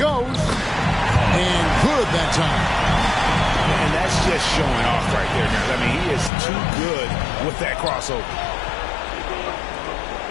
And good that time. And that's just showing off right there, guys. I mean, he is too good with that crossover.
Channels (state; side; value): drops out; right; at 6.3 s